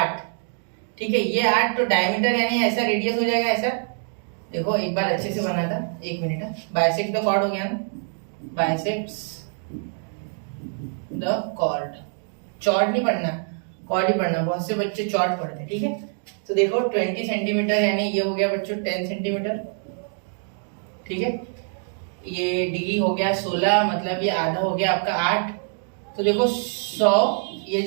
ठीक है, ये 8, तो डायमीटर यानी ऐसा रेडियस हो जाएगा ऐसा, देखो एक बार अच्छे से बना था, 1 मिनट। बाइसेक्ट द कॉर्ड हो गया ना, बाइसेक्ट्स द कॉर्ड, चॉर्ड नहीं पढ़ना, कॉर्ड ही पढ़ना, बहुत से बच्चे चॉर्ड पढ़ते हैं। ठीक है, तो देखो 20 सेंटीमीटर यानी ये हो गया बच्चों 10 सेंटीमीटर। ठीक है, ये डी हो गया 16, मतलब ये आधा हो गया आपका 8, तो देखो 100, ये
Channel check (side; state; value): left; silent; 55 dB below the other